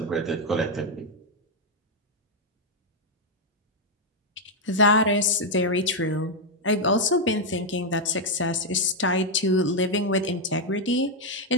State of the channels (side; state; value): both; normal; correlation 0.01